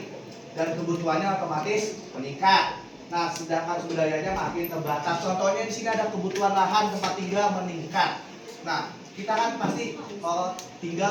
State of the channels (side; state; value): both; identical; correlation 1.00